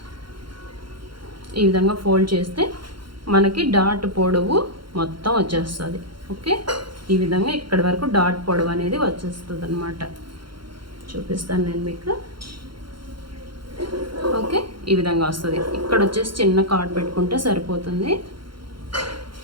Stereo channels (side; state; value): left; late; 0.73 ms